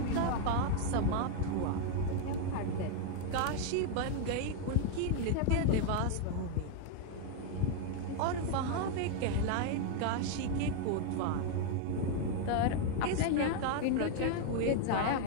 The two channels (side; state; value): both; different; correlation 0.00